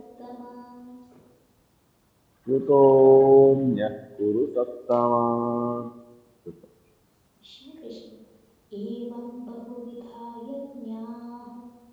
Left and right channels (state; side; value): identical; both; correlation 1.00